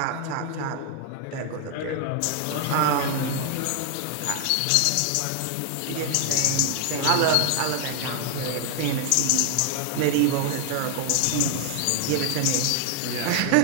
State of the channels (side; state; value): both; different; correlation 0.00